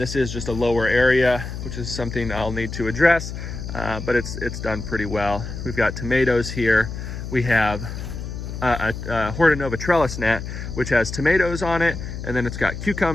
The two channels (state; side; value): noise; left; hum, 7 dB below the sound